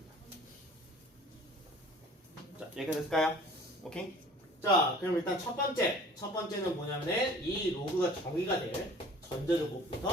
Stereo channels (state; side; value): normal; both; correlation 0.48